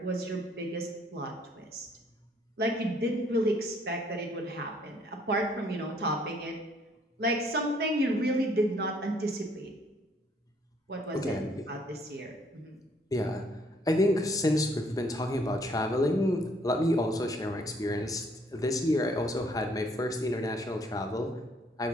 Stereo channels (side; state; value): both; normal; correlation 0.64